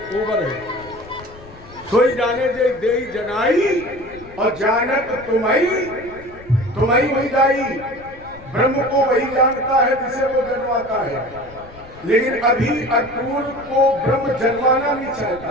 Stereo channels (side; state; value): left; noise; rumble, 20 dB below the sound